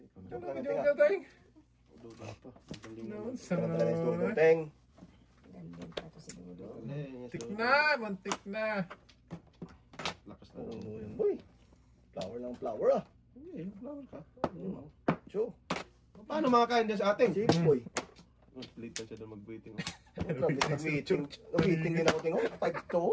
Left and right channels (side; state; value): both; identical; correlation 1.00